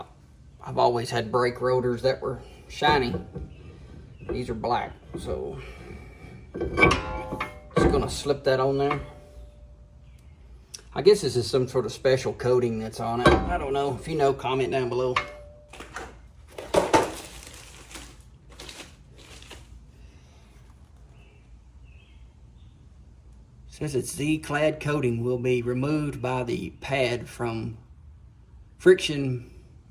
always had brake rotors that were shiny. These are black, so just gonna slip that on there. I guess this is some sort of special coating that's on it. I don't know. If you know, comment down below. Says its Z-clad coating will be removed by the pad from friction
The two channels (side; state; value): both; identical; correlation 1.00